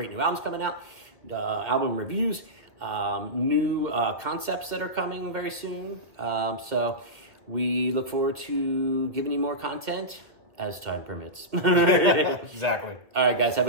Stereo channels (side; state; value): left; late; 1.9 ms